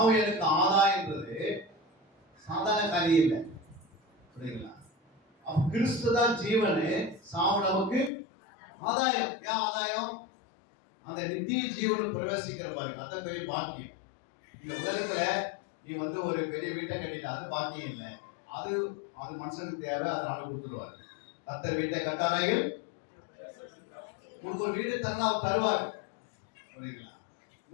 ஆதாயன்றது சாதாரண காரியம் இல்லை. புரியுங்களா? அப்ப கிறிஸ்து தான் ஜீவனு, சாவு நமக்கு ஆதாயம். ஏன் ஆதாயம்? அந்த நித்திய ஜீவனு பிரவேசிக்கிற பாருங்க, அதான் பெரிய பாக்கியம். இந்த உலகத்துல நீ வந்து ஒரு பெரிய வீட்டை கட்டிட்ட, அது பாக்கியம் இல்லை. அது அது மனுஷனுக்கு தேவை, அதை ஆண்டு கொடுத்துருவாரு. கர்த்தர் வீட்டை கட்டாராய்கள் உனக்கு ஒரு வீடு தரனா அவர் தருவார். புரியுங்களா?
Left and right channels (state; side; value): drops out; right; at 8.1 s